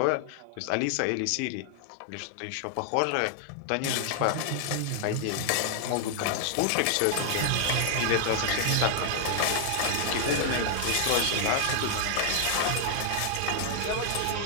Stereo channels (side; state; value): both; different; correlation 0.00